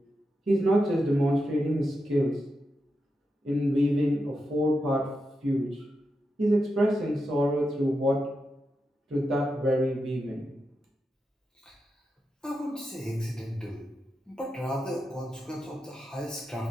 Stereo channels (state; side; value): normal; both; correlation 0.87